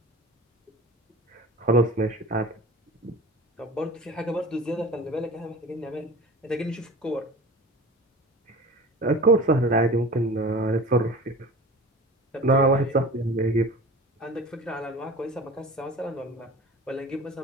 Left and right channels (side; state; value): both; normal; correlation 0.38